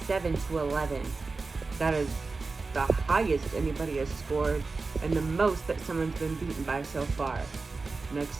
That is the highest anybody has scored. And the most that someone's been beaten by so far.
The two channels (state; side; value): quieter; left; 4.0 dB